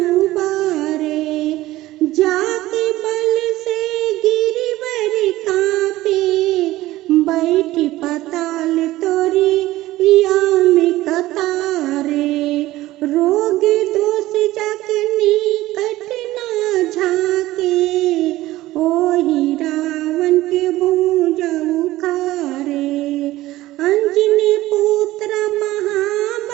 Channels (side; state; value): left; quieter; 16.6 dB